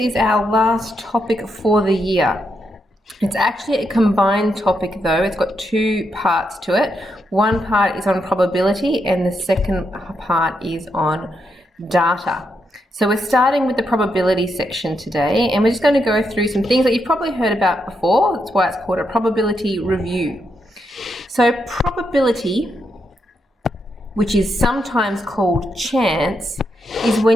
our last topic for the year. It's actually a combined topic though, it's got two parts to it. One part is on probability and the second part is on data. So we're starting with the probability section today, and we're just going to go through some things that you've probably heard about before. That's why it's called a probability review. So probability, which is sometimes called chance, is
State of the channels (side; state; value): both; normal; correlation 0.81